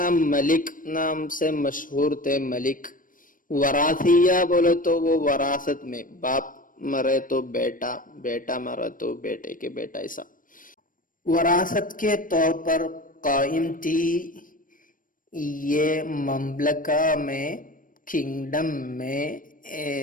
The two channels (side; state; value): right; late; 0.40 ms